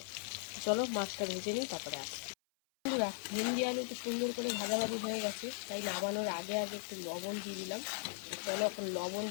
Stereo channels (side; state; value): right; silent; 52 dB below the other